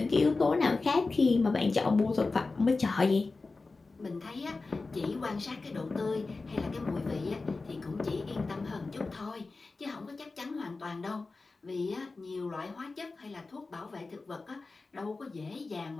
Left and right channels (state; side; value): quieter; right; 3.8 dB